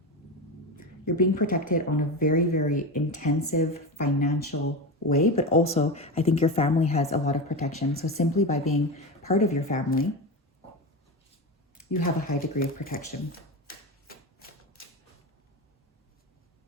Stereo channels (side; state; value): both; normal; correlation 0.21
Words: You're being protected on a very, very intensive financial way, but also I think your family has a lot of protection. So simply by being part of your family, you have a high degree of protection.